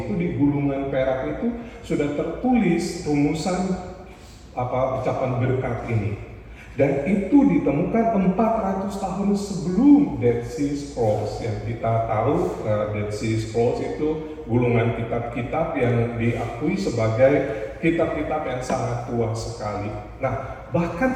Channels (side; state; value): both; identical; correlation 1.00